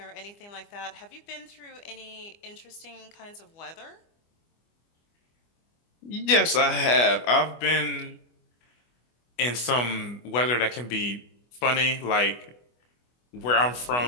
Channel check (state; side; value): late; right; 25 ms